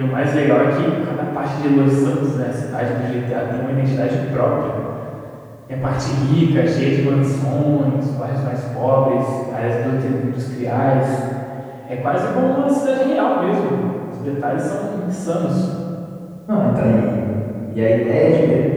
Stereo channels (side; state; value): both; identical; correlation 1.00